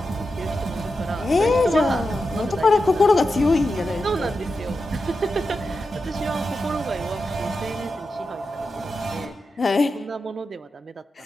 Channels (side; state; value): both; normal; correlation 0.89